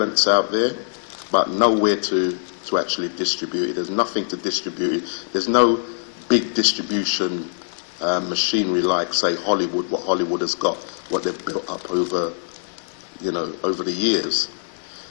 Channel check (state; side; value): silent; right; digital silence